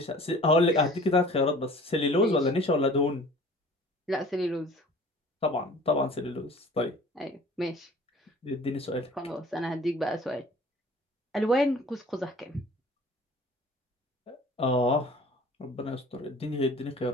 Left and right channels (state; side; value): normal; both; correlation 0.47